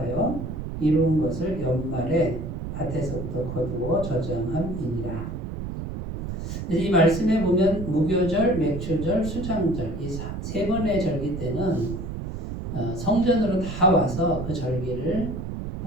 이룬 것을 연말에 밭에서부터 거두어 저장함이니라. 이 말씀에 보면 무교절, 맥추절, 수장절 이 3번의 절기 때는 성전으로 다 와서 그 절기를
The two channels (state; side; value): noise; right; rumble, 6 dB below the sound